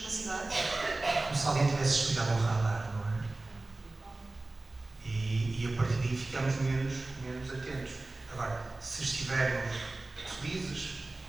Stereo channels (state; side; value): quieter; left; 3.1 dB